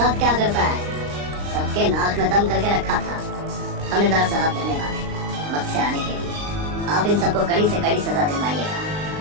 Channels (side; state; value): left; late; 39 ms